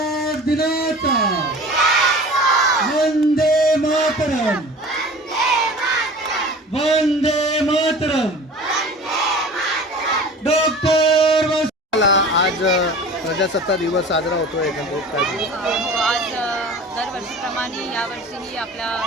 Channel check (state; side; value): normal; both; correlation 0.40